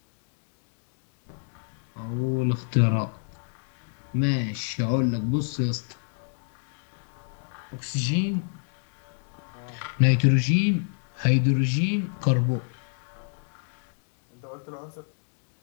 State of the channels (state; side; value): silent; right; digital silence